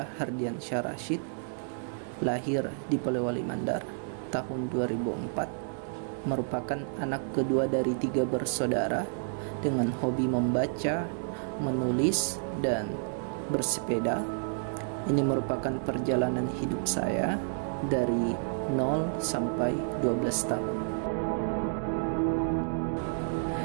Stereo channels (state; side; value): silent; left; digital silence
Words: Hardian Syah Rashid, lahir di Polewali Mandar tahun 2004, merupakan anak kedua dari 3 bersaudara dengan hobi membaca, menulis, dan bersepeda. Ini merupakan perjalanan hidup saya dari 0 sampai 12 tahun.